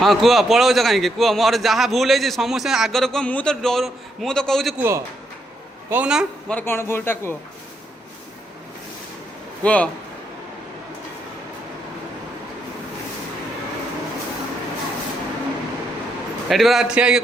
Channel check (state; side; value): normal; both; correlation 0.77